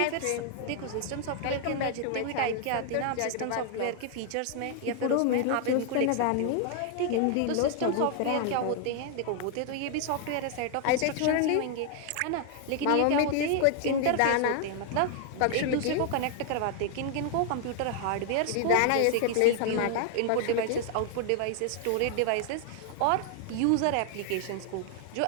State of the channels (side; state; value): both; different; correlation 0.00